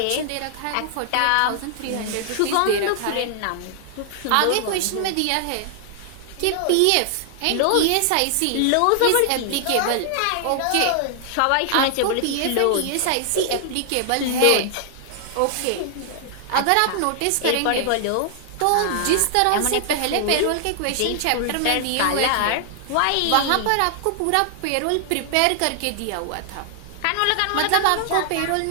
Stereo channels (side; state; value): both; different; correlation 0.00